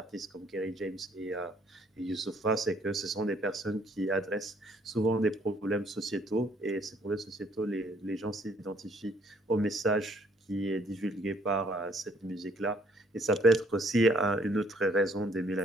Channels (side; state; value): both; normal; correlation 0.64